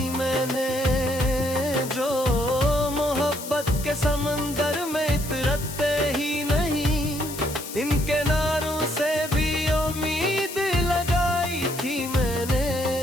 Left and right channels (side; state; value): left; noise; hiss, 11 dB below the sound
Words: मैंने, जो मोहब्बत के समंदर में इतरते ही नहीं। इन किनारों से भी उम्मीद लगाई थी मैंने।